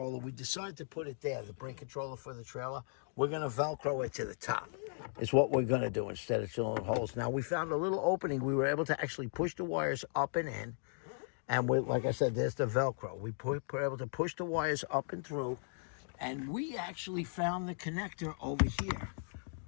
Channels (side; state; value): right; silent; digital silence